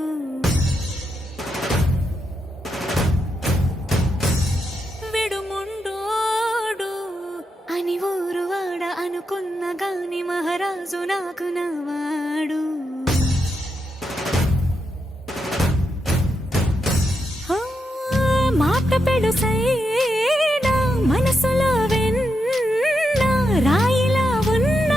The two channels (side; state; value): both; normal; correlation 0.84